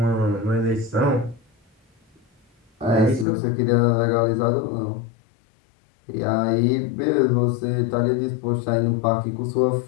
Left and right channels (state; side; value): drops out; right; at 3.2 s